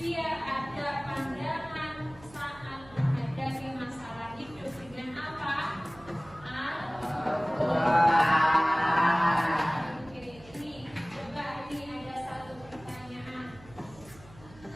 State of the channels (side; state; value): right; noise; hum, 21 dB below the sound